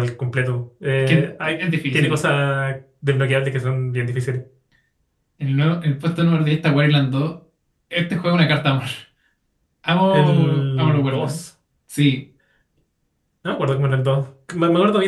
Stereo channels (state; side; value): identical; both; correlation 1.00